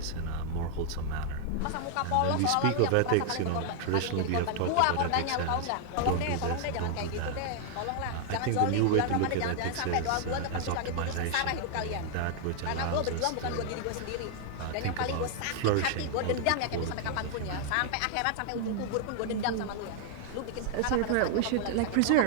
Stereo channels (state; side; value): different; both; correlation 0.00